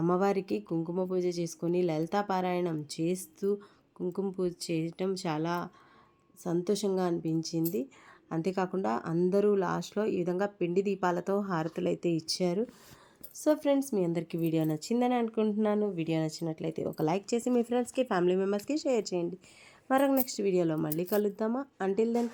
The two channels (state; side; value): identical; both; correlation 1.00